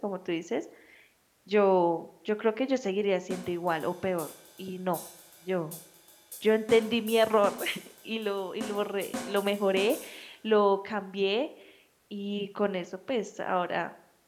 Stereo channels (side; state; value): both; identical; correlation 1.00